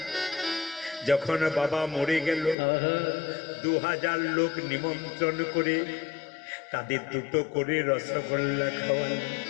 যখন বাবা মরে গেল, 2000 লোক নিমন্ত্রণ করে তাদের দুটো করে রসগোল্লা খাওয়াল।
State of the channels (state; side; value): drops out; right; at 2.6 s